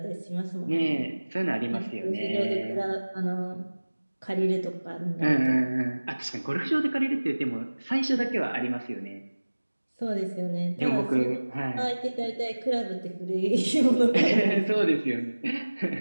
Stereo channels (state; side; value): inverted; both; correlation -1.00